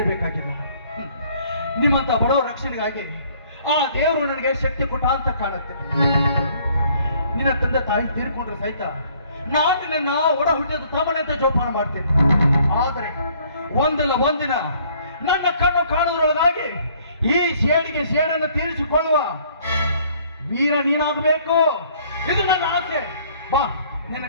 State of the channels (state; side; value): inverted; both; correlation -0.60